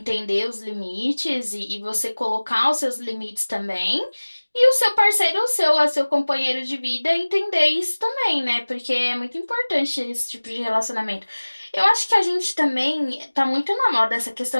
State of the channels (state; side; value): inverted; both; correlation -1.00